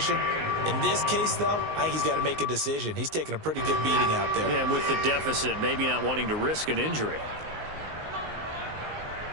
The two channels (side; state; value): left; late; 19 ms